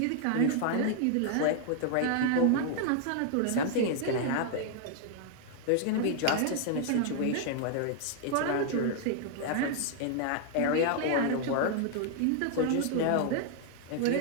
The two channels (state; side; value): different; both; correlation 0.00